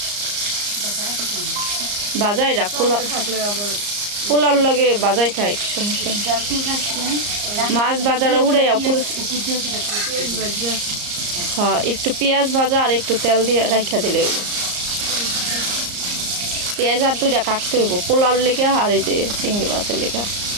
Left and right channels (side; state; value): left; late; 34 ms